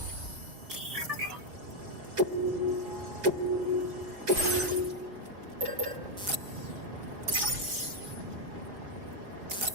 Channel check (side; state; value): left; late; 4.8 ms